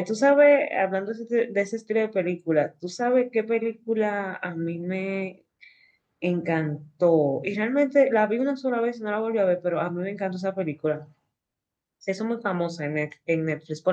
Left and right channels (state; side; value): identical; both; correlation 1.00